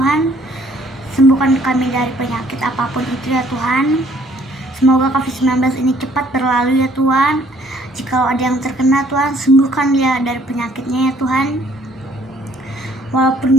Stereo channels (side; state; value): both; normal; correlation 0.62